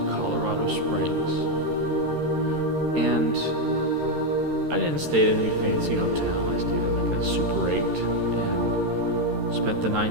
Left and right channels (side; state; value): left; late; 13 ms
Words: Colorado Springs, and I didn't stay at any fancy hotel. I stayed at like a Super 8 and spent the